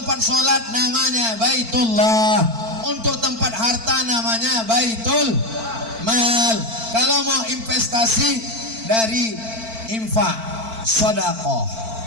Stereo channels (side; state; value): left; late; 4.5 ms